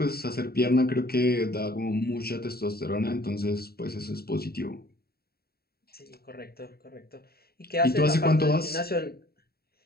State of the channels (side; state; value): right; late; 0.45 ms